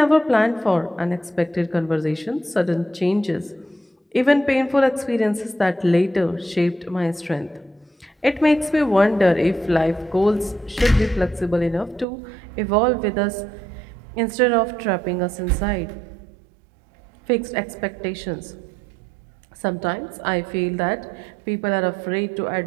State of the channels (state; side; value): drops out; left; at 12.1 s